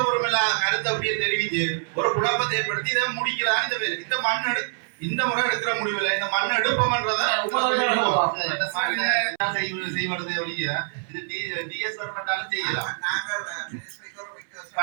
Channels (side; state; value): left; silent; 62 dB below the other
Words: கருத்தை அப்படியே தெரிவித்து ஒரு குழப்பத்தை ஏற்படுத்தி இதை முடிக்கிறான். இந்த மண் இந்த முறை எடுக்கிற முடிவில் இந்த மண் எடுப்போம்ன்றதை செய்வது ஒழிய இது டிஎஸ் கவர்மெண்டாலும் செய்யலாம்.